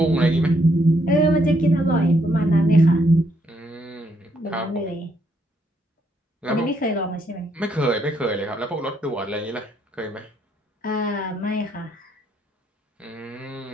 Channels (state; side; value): normal; both; correlation 0.73